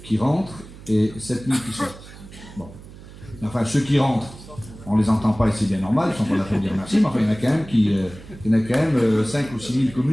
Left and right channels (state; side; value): noise; right; hum, 18 dB below the sound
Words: qui rentrent et 7 000 qui sortent. Bon. Enfin, ceux qui rentrent, on les entend pas et c'est bien normal, ils sont pas là pour dire merci, mais enfin, il y en a quand même 5 ou 6 000